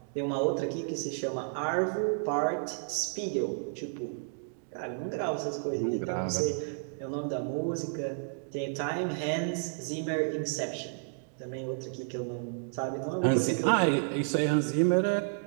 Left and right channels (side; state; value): left; silent; digital silence